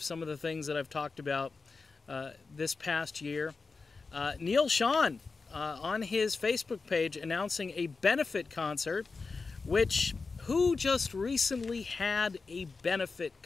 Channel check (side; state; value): right; quieter; 4.3 dB